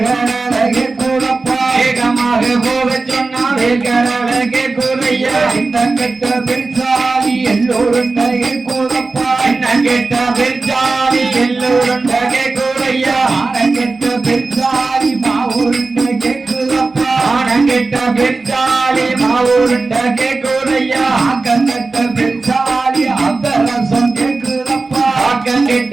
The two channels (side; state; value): left; quieter; 3.7 dB